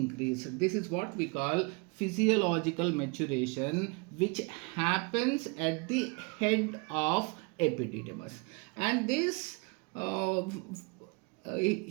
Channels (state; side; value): quieter; left; 30.8 dB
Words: This is what we call physiological maturation, which happens at the head of epididymis. And this